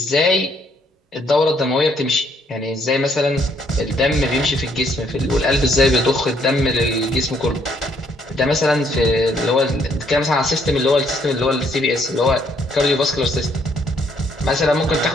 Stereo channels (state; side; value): normal; both; correlation 0.69